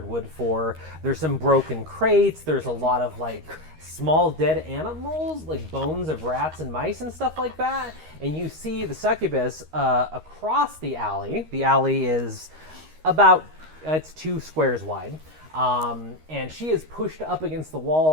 wood for. There's some broken crates. There's a lot of like small dead animals, like bones of rats and mice and stuff like that. And you see the succubus across the alley. The alley is about, it's 2 squares wide. And she is pushed up against the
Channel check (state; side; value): late; left; 13 ms